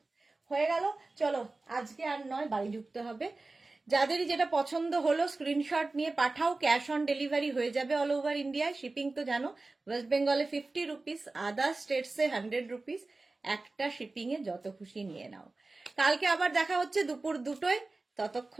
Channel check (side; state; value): left; quieter; 3.4 dB